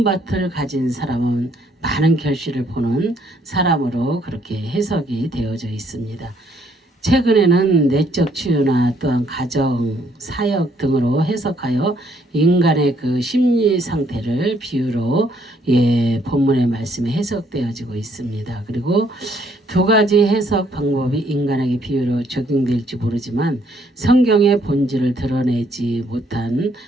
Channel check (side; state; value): both; normal; correlation 0.67